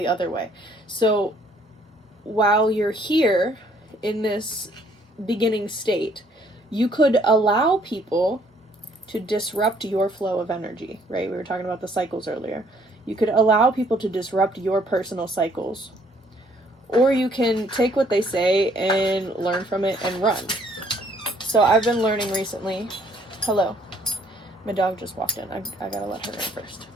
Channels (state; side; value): normal; both; correlation 0.63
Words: other way. So while you're here in this beginning state, you could allow people to disrupt your flow of energy, right? We were talking about the cycles earlier. You could allow people to disrupt your personal cycles. Or you can take what they say and learn from it and run. So I've been learning recently. Hello. My dog just walked in. I gotta let her in first.